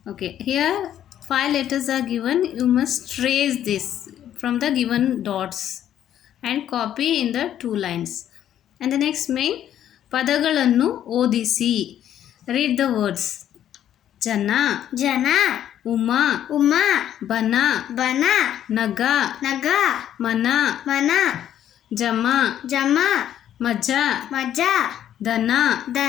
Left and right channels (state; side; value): quieter; right; 10.9 dB